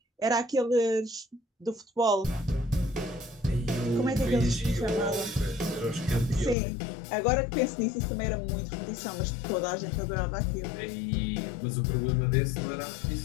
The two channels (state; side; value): drops out; right; at 6.6 s